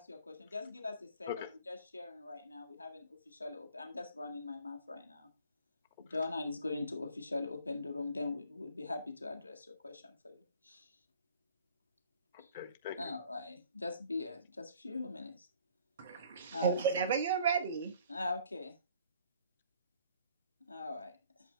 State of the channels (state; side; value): inverted; both; correlation -0.55